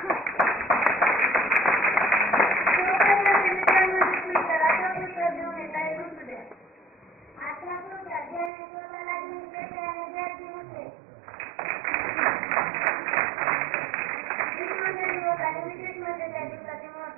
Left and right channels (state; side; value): drops out; left; at 8.5 s